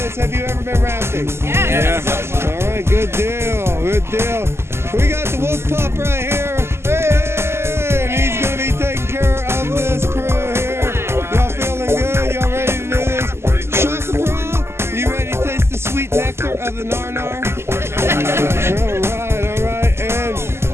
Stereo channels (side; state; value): left; late; 0.12 ms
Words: Have you ever been rafting? Yeah. All right, good deal, good deal. We got the wolf pup right here. Hey, and he's going to be taking care of this crew here. Y'all feeling good? Y'all ready to do this? Shaka Bra, you ready to taste the sweet nectar of the nar-nar? All right. And,